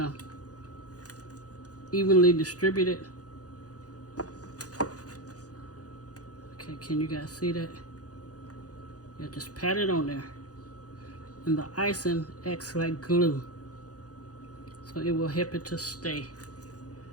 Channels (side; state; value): right; late; 0.67 ms